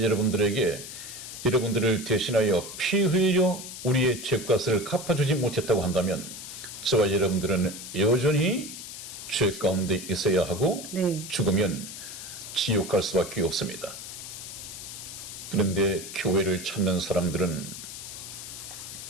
여러분들에게 여러분들을 대신하여 피 흘려 우리의 죄값을 갚아주지 못했다고 한다면 저와 여러분들은 여전히 죄 가운데 있어야 하고 네. 죽으면 지옥 갈 수밖에 없습니다. 그런데 교회를 찾는 사람들은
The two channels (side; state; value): left; noise; hiss, 10 dB below the sound